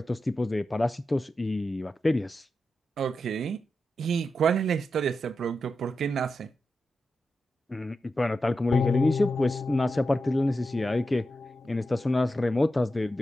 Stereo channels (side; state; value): both; normal; correlation 0.89